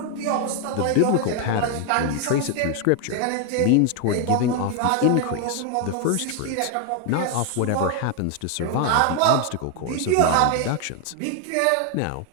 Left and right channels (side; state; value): both; different; correlation 0.01